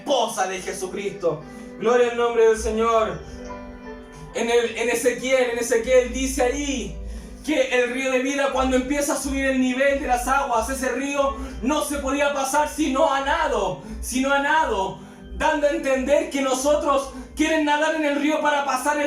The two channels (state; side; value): identical; both; correlation 1.00